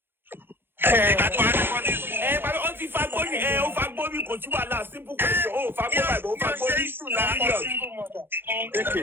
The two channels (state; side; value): late; left; 0.10 ms